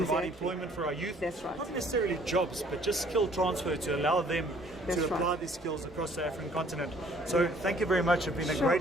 employment for our youth. That's right. Not necessarily jobs, but just skill transfer to allow them to apply these skills across the African continent. So thank you very much. It's been a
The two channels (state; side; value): normal; both; correlation 0.58